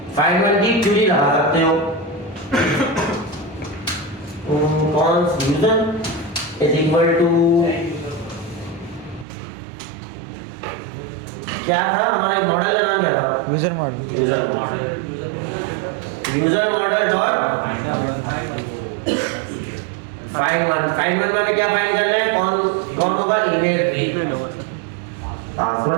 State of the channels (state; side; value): drops out; left; at 9.2 s